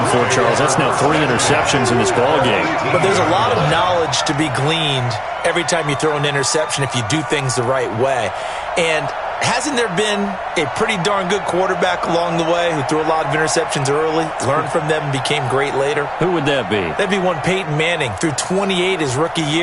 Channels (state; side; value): identical; both; correlation 1.00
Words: for, Charles. That's now 3 interceptions in this ballgame. But there's a lot of knowledge to be gleaned every time you throw an interception if you do things the right way. And hasn't there been a pretty darn good quarterback along the way who threw a lot of interceptions early, learned from them, and became great later? Who would that be? That'd be one Peyton Manning. Threw 28 his rookie